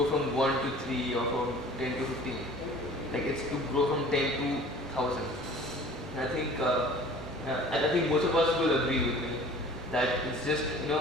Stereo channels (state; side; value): normal; both; correlation 0.46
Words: from 1 to 3 or from 10 to 15. Like it's to grow from 10 to 1,000. And I think most of us will agree with me that it's just